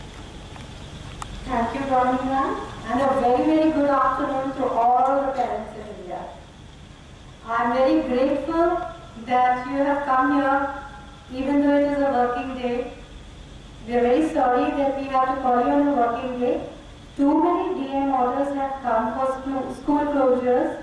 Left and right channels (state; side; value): identical; both; correlation 1.00